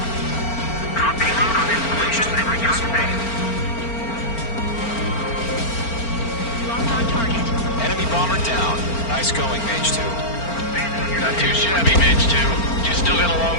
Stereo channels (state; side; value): late; right; 4.4 ms